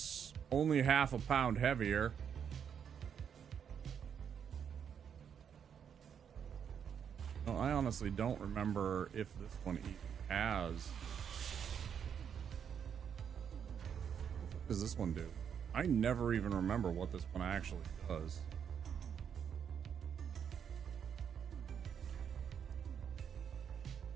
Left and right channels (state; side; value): quieter; left; 7.8 dB